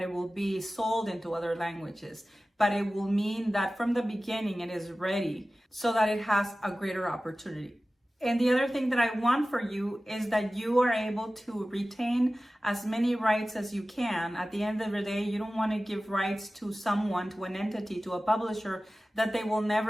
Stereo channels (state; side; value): normal; both; correlation 0.96